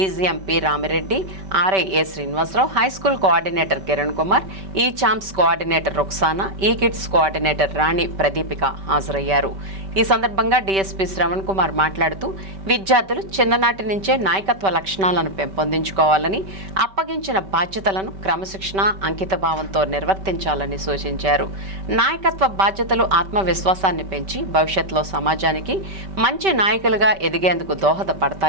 P Ramireddy, RI A Srinivasarao, high school coordinator Kiran Kumar, ఈ చాంప్స్ కోఆర్డినేటర్ రుక్సానా, ఈ కిడ్స్ కోఆర్డినేటర్ రాణి ప్రదీపిక హాజరయ్యారు. ఈ సందర్భంగా డీఎస్పీ శ్రవణ్ కుమార్ మాట్లాడుతూ విద్యార్థులు చిన్ననాటి నుంచే నాయకత్వ లక్షణాలను పెంపొందించుకోవాలని, అప్పగించిన బాధ్యతలను క్రమశిక్షణ, అంకితభావంతో నిర్వర్తించాలని సూచించారు. నాయకత్వ బాధ్యతలు ఆత్మవిశ్వాసాన్ని పెంచి భవిష్యత్తులో సమాజానికి మంచి నాయకులుగా ఎదిగేందుకు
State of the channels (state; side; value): late; left; 5.2 ms